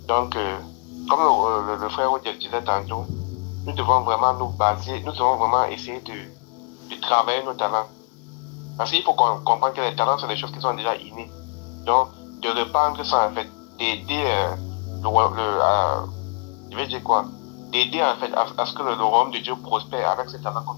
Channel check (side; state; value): right; quieter; 37.3 dB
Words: Donc, comme le frère Odiek disait tantôt, nous devons vraiment nous baser, nous devons vraiment essayer de travailler nos talents. Parce qu'il faut comprendre que les talents sont des choses qui sont déjà innées. Donc, de répandre ça en fait, d'aider je vais dire quoi? D'aider en fait à ce que le royaume de Dieu prospère avec ces talents que